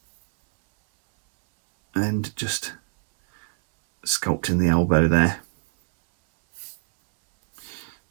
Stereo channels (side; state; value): left; silent; 63 dB below the other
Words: and just sculpting the elbow there.